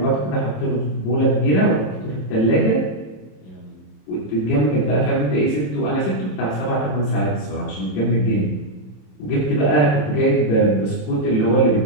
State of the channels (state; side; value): late; right; 27 ms